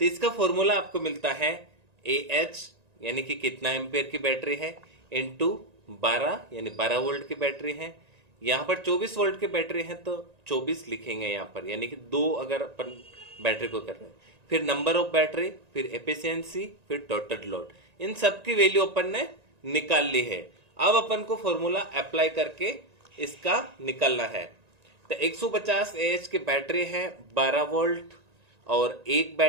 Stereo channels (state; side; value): late; left; 1.9 ms